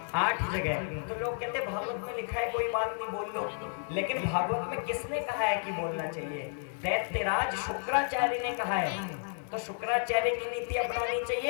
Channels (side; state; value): right; silent; 57 dB below the other